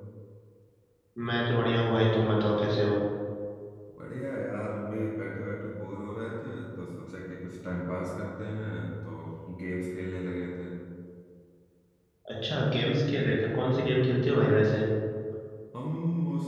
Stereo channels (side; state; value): both; identical; correlation 1.00